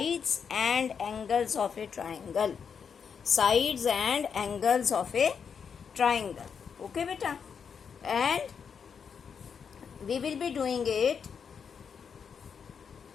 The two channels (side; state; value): right; quieter; 6.7 dB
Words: and angles of a triangle. Sides and angles of a triangle. Okay, beta. And we will be doing it.